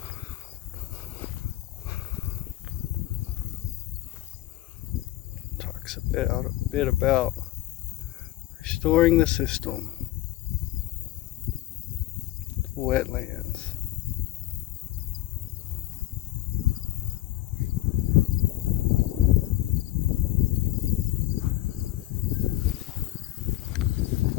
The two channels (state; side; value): quieter; right; 17.0 dB